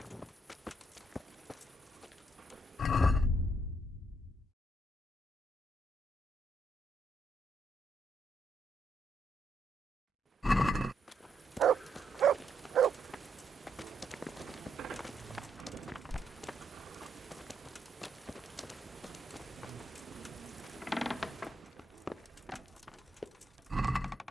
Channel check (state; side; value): normal; both; correlation 0.77